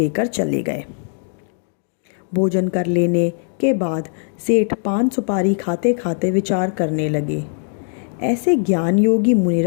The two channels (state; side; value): silent; right; 62 dB below the other